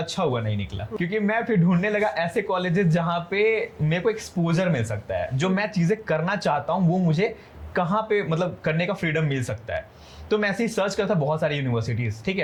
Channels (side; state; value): both; identical; correlation 1.00